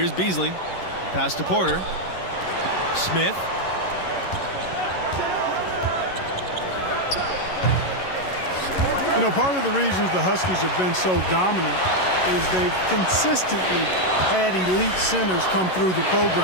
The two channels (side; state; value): right; late; 11 ms